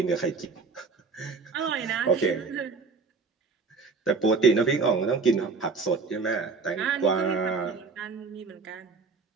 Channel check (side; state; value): left; quieter; 4.6 dB